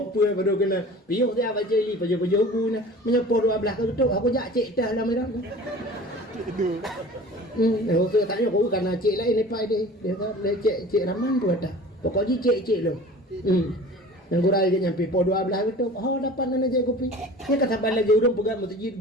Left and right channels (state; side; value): normal; both; correlation 0.42